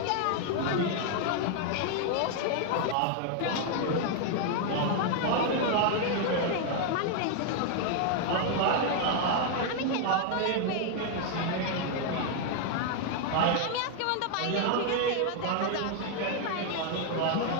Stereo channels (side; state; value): both; different; correlation 0.00